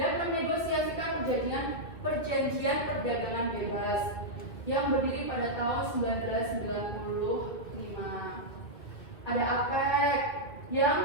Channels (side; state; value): right; late; 2.0 ms